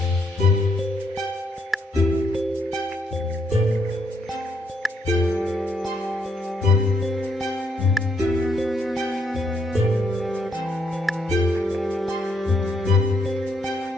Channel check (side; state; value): both; normal; correlation 0.74